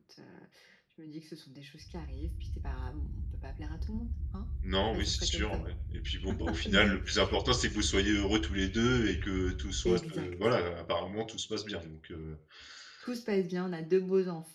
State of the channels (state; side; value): identical; both; correlation 1.00